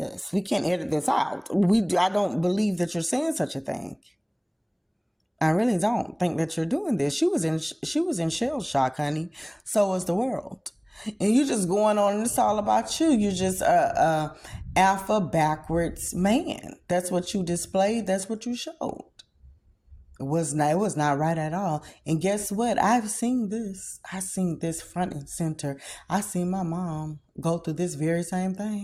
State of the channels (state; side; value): identical; both; correlation 1.00